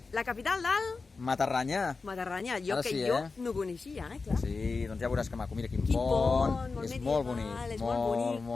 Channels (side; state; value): right; quieter; 4.2 dB